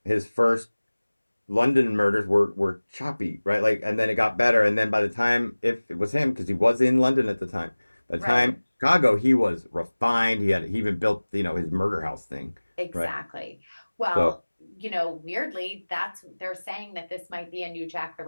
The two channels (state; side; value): inverted; both; correlation -1.00